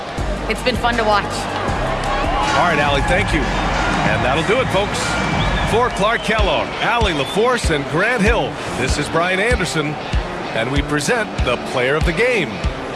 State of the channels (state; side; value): identical; both; correlation 1.00